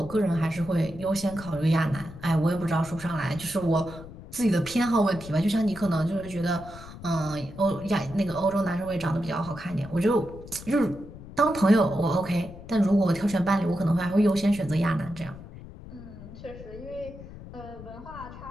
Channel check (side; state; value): left; noise; rumble, 15 dB below the sound